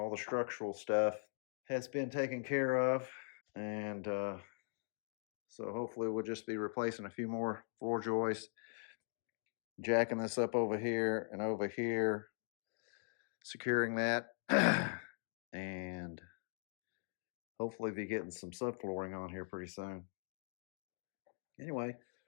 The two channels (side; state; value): right; silent; digital silence